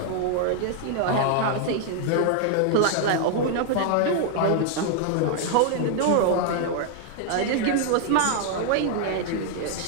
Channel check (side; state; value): both; different; correlation 0.00